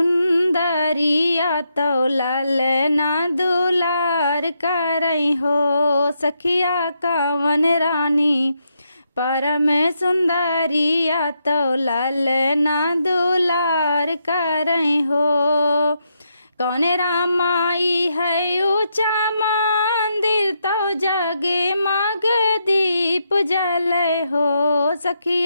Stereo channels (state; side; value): inverted; both; correlation -0.81